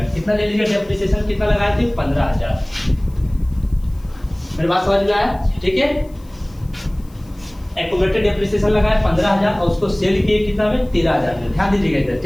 कितना ले लीजिएगा, डेप्रिसिएशन कितना लगाए थे, 15,000। मेरी बात समझ में आया, ठीक है। एक्यूमुलेटेड डेप्रिसिएशन लगाए 15,000 और उसको सेल किए कितना में, 13,000 में, ध्यान दीजिएगा इधर,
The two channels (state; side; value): noise; left; hiss, 29 dB below the sound